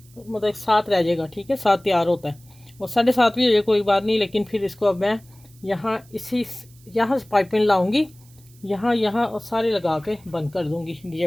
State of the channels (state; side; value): noise; right; hiss, 28 dB below the sound